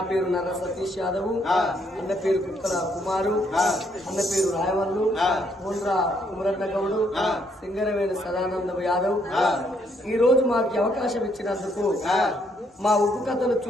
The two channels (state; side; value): normal; both; correlation 0.71